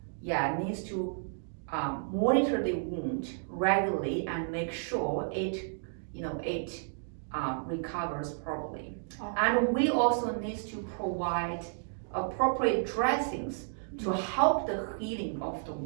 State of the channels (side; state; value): left; silent; digital silence